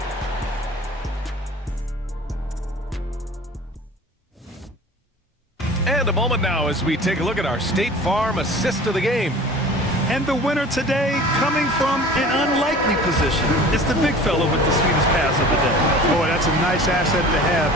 And a moment now as we take a look at our State Farm assist of the game. And the winner today coming from an unlikely position. It's the big fella with the sweetest pass of the day. Boy, that's a nice asset to have.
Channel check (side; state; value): both; normal; correlation 0.42